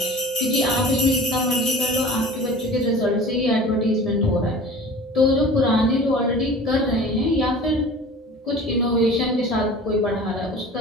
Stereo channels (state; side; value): normal; both; correlation 0.41